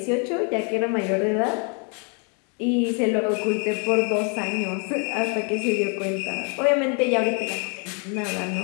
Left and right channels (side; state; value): right; quieter; 37.7 dB